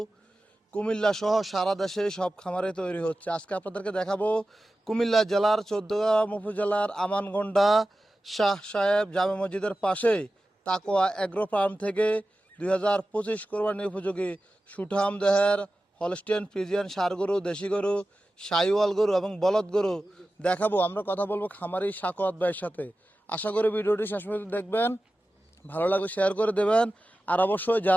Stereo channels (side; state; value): both; normal; correlation 0.94